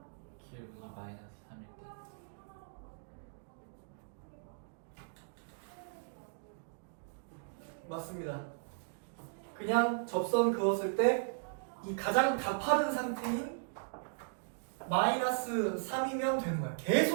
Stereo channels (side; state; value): left; silent; digital silence